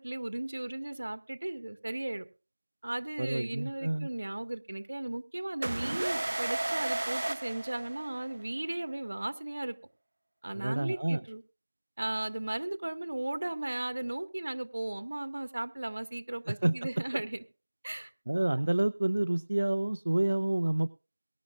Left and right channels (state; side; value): inverted; both; correlation -1.00